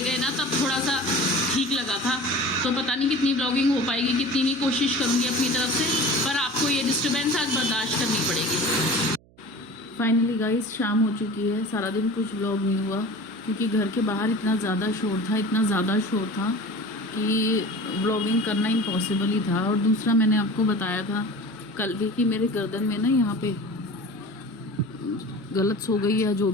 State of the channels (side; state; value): right; noise; hum, 29 dB below the sound